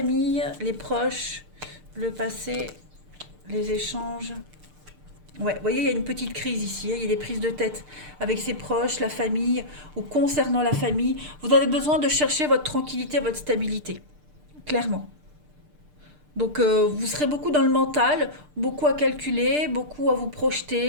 les proches, le passé, les échanges. Ouais, vous voyez, il y a une petite crise ici, hein. Il y a des prises de tête avec ses proches, la famille, ou concernant la famille. Vous avez besoin de chercher votre tranquillité, votre stabilité, clairement. Donc, vous serez beaucoup dans le mental, beaucoup à calculer, beaucoup à vous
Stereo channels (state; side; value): late; left; 6.7 ms